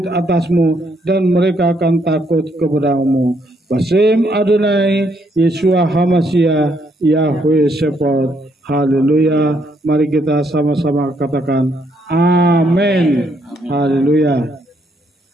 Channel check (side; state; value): both; normal; correlation 0.73